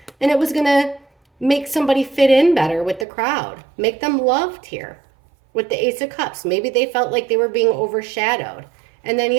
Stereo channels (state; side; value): drops out; left; at 3.1 s